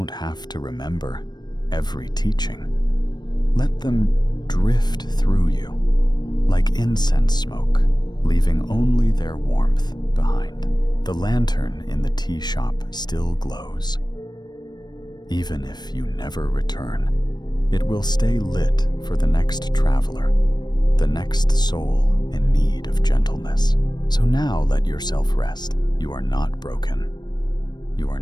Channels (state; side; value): late; right; 0.21 ms